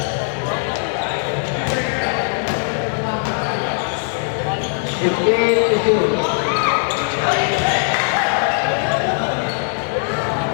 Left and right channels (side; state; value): right; silent; 60 dB below the other